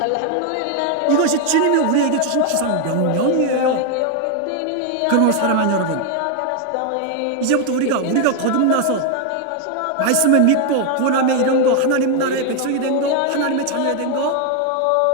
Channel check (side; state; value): both; different; correlation 0.00